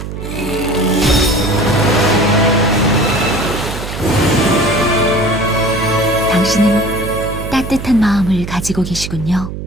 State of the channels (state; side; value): noise; right; hum, 8 dB below the sound